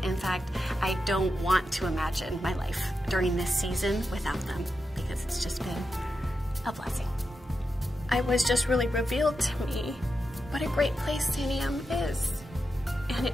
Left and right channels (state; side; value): normal; both; correlation 0.88